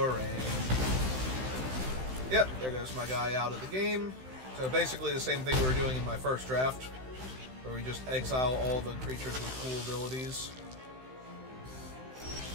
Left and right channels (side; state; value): left; late; 16 ms